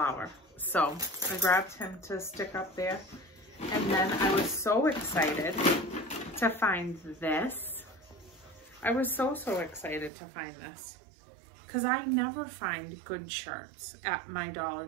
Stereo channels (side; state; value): left; drops out; at 10.1 s